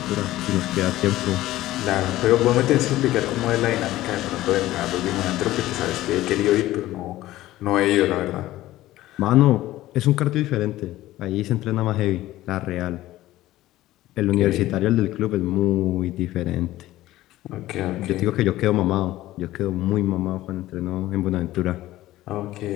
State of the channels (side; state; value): right; quieter; 15.7 dB